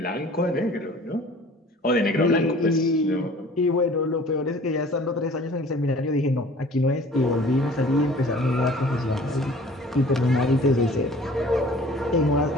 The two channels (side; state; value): both; normal; correlation 0.48